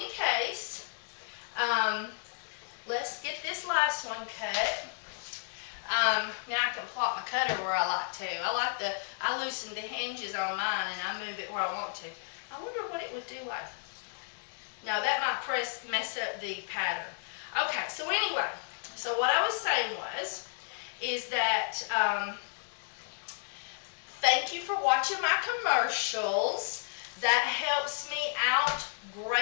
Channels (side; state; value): right; silent; digital silence